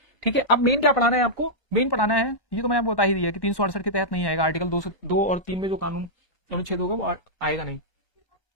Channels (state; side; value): late; right; 1.1 ms